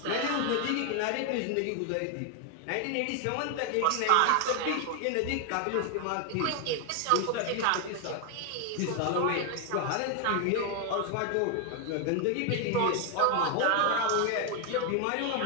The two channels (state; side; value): different; both; correlation 0.01